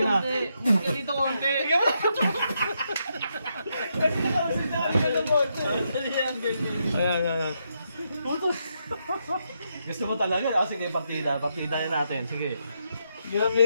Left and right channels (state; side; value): inverted; both; correlation -0.80